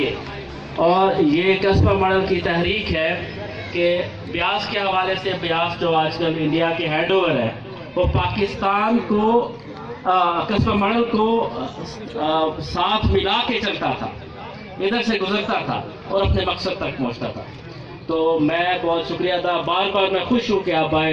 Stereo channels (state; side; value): identical; both; correlation 1.00